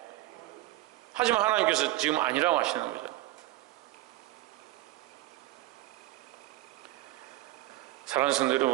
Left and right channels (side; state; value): left; quieter; 17.1 dB